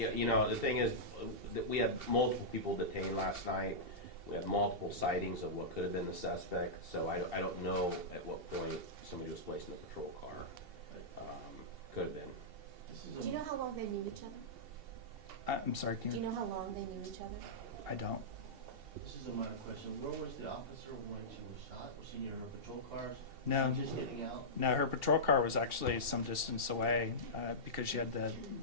thing is that we had multiple people detained last night. We had multiple sightings of what could have been the suspect, so I don't know at what point somebody was placed in the patrol car. Could have been. Do you know how long they knew each other? I'm sorry, can Do you? you know how long they knew each other? I don't. This is a minor question. Where was the officer when she was shot? Was she near her patrol cars? No, Just getting out? no, her patrol car was actually some distance away because she had the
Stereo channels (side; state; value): left; late; 2.8 ms